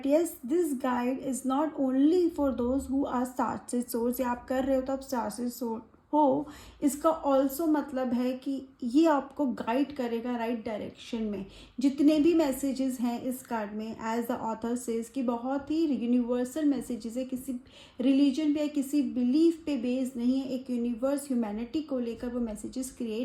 yes, this guide is not only for those who are star seed souls. ये आप कर रहे हो तो आप star seed soul हो, इसका ऑल्सो मतलब है कि ये आपको गाइड करेगा राइट डायरेक्शन में. जितने भी मैसेजेस हैं इस कार्ड में, एज द ऑथर सेज, कि बहुत ही यूनिवर्सल मैसेजेस है, किसी रिलीजन पे या किसी बिलीफ पे बेस्ड नहीं है. एक यूनिवर्स, ह्यूमैनिटी को लेकर वो मैसेजेस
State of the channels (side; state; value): both; identical; correlation 1.00